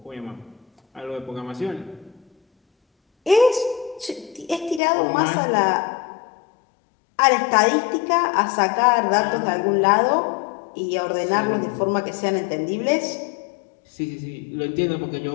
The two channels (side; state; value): right; drops out; at 4.8 s